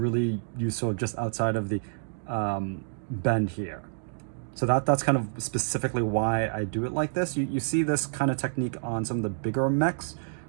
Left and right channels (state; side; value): silent; left; digital silence